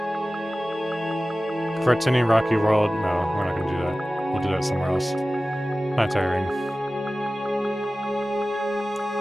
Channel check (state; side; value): normal; both; correlation 0.96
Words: Fertini Rocky World? No, we're not gonna do that. We'll do that somewhere else. Planetary ring.